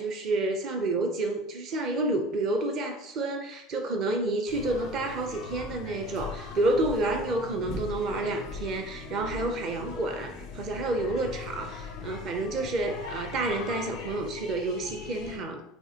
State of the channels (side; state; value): both; normal; correlation 0.43